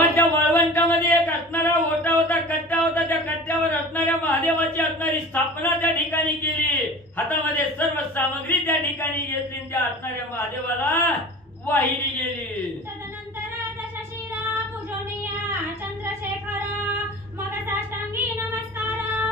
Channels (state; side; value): normal; both; correlation 0.38